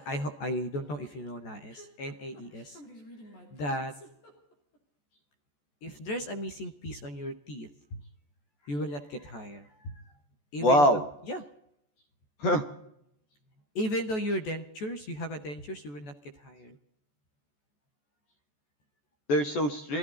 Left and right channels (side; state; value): right; late; 14 ms